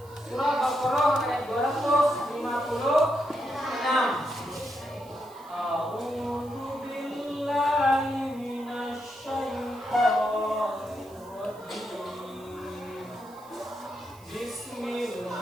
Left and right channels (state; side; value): noise; right; hiss, 25 dB below the sound